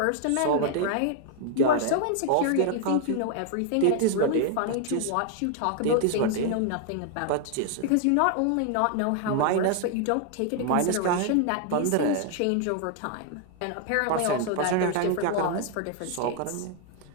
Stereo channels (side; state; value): both; different; correlation 0.00